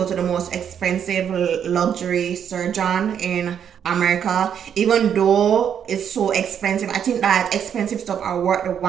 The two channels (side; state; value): left; quieter; 8.5 dB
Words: to the most expensive luxury surgeon in America. Even though it's so expensive, I think that expensive stuff are worth the